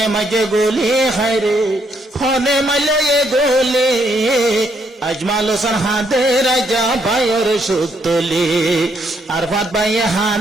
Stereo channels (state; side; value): normal; both; correlation 0.73